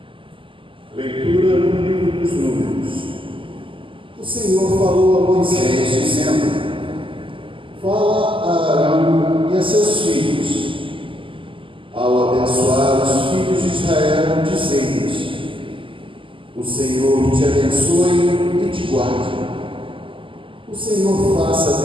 Leitura no livro dos Números. O Senhor falou a Moisés, dizendo: fala a Arão e a seus filhos, ao abençoar os filhos de Israel, dizendo-lhes: o Senhor te abençoe e te guarde. O Senhor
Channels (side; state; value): left; late; 0.25 ms